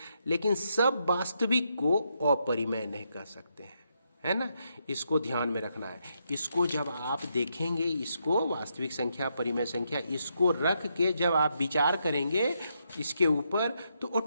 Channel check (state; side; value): inverted; both; correlation -0.79